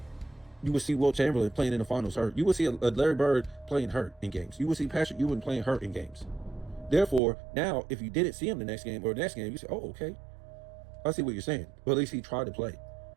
will see Will Chamberlain playing in the finals hurt. You will see a Larry Bird playing hurt in games. You will see Patrick Ewing playing hurt in games. Therefore, now, if you didn't see him the next game or the next game, you say, oh, okay. I see what you're saying. But at least he tried to play.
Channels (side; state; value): left; drops out; at 7.2 s